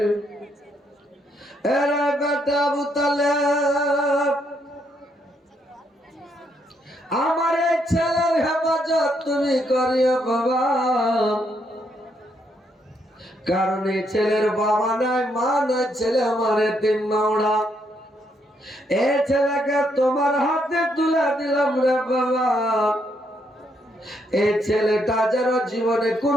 এরে বেটা আবু তালেব, আমার এই ছেলের হেফাজত তুমি করিও বাবা, কারণ এই ছেলের বাবা নাই, মা নাই, ছেলে আমার এতিম মাওড়া। এই ছেলেকে তোমার হাতে তুলে দিলাম রে বাবা। এই ছেলেটা যেন জীবনে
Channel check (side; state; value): both; normal; correlation 0.75